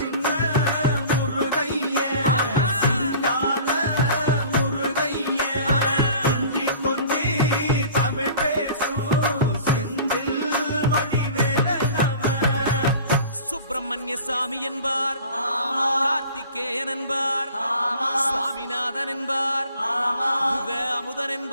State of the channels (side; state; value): both; inverted; correlation -0.44